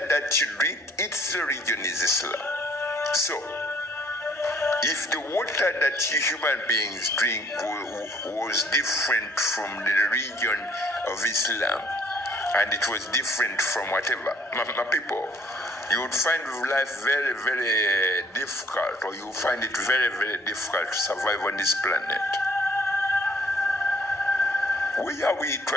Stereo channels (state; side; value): normal; both; correlation 0.61